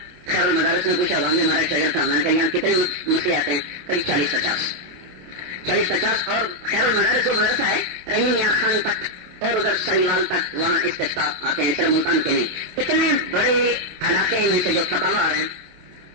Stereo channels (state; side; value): late; left; 28 ms